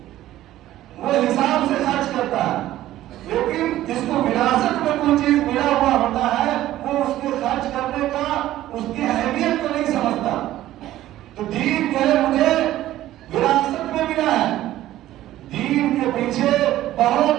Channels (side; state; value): left; quieter; 14.2 dB